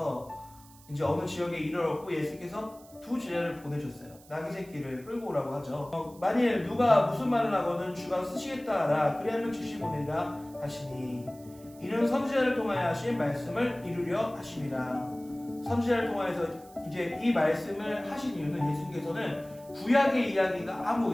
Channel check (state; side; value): noise; right; hiss, 24 dB below the sound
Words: 이제 어느 지역에 이르렀고 예수께서 두 제자를 보내셨어요. 나귀 새끼를 끌고 오라고 하죠. 만일 누가 무슨 말을 하거든 주가 쓰시겠다 하라. 그리하면 즉시 보내리라 하시니 이는 선지자를 통하여 하신 말씀을 이루려 하심이라. 선지자를 통하여서 이제 이 말씀을 하신 이유는 예수님께서는 구약의 이야기가 아무